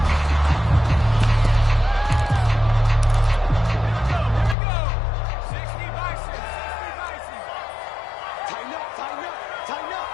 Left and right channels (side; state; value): right; drops out; at 4.5 s